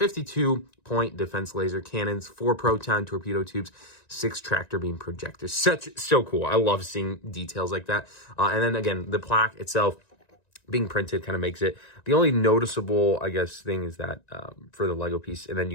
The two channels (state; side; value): late; right; 1.9 ms